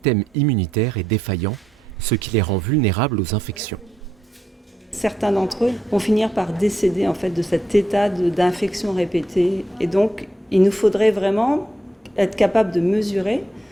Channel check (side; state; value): both; normal; correlation 0.80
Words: immunitaire, est défaillant, ce qui les rend vulnérables aux infections. Certains d'entre eux vont finir par décéder de cet état d'infection répétée. Et donc, il nous faudrait vraiment être capable de mesurer